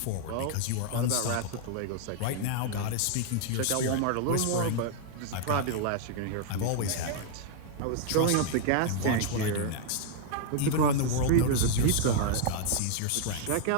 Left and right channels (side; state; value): both; different; correlation 0.00